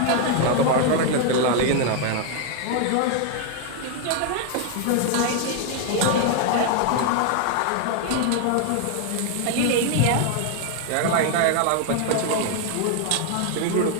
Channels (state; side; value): different; both; correlation 0.00